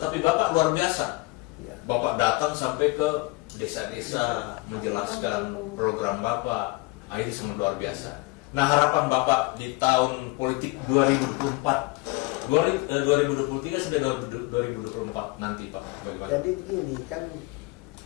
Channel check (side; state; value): right; quieter; 24.5 dB